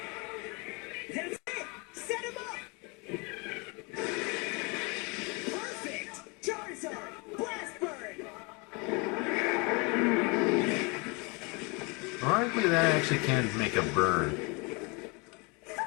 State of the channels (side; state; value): right; quieter; 29.9 dB